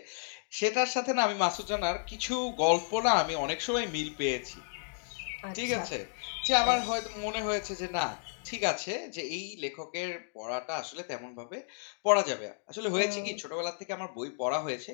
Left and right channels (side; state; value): right; silent; digital silence